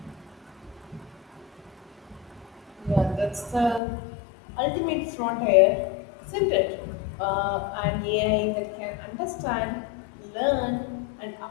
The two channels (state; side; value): drops out; right; at 3.8 s